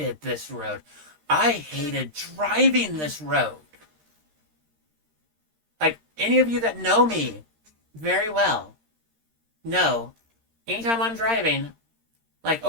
this road. I hated driving this road. Like, any of you that know me very well know, anytime I'm driving, like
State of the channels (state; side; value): late; left; 13 ms